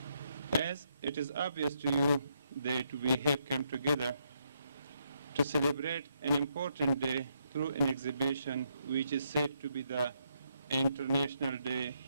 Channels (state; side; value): inverted; both; correlation -0.77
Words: As it is obvious to you that we have come together to celebrate an important day through an exhibition which is said to be the International Day